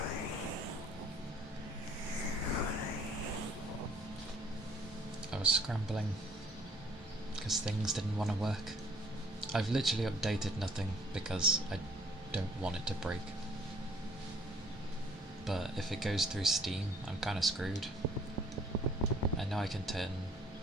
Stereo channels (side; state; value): both; normal; correlation 0.59